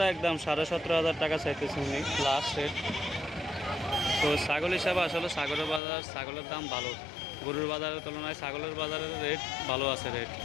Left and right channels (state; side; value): drops out; right; at 5.8 s